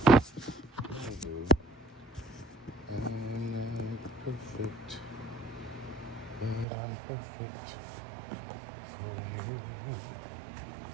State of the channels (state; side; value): drops out; left; at 6.7 s